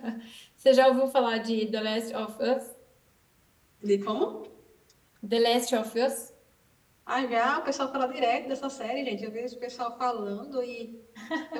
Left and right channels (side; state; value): both; identical; correlation 1.00